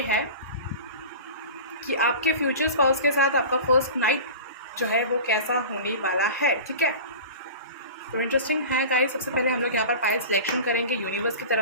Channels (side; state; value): both; inverted; correlation -0.35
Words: है कि आपके फ्यूचर स्पाउस के साथ आपका फर्स्ट नाइट जो है वो कैसा होने वाला है। ठीक है, तो इंटरेस्टिंग है गाइस। सबसे पहले हम लोग यहाँ पर पाइल सिलेक्शन करेंगे यूनिवर्स की